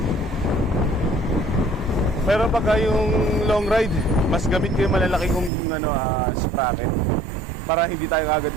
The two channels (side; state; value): left; drops out; at 5.5 s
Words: Pero pagka yung long ride, mas gamit ko yung malalaki kong sprocket para hindi tayo agad